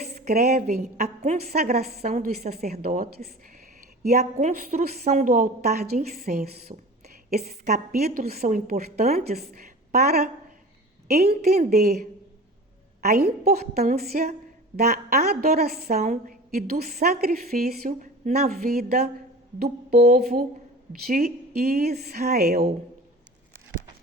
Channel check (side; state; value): both; normal; correlation 0.37